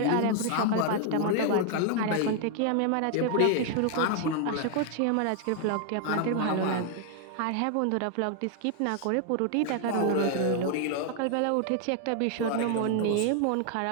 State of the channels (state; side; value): different; both; correlation 0.00